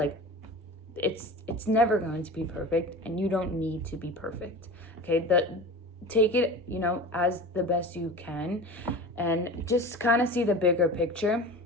it's never going to be perfect, and you don't need to be perfect. Okay, take it as the best you can, and just kind of see the bigger picture.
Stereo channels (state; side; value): normal; both; correlation 0.33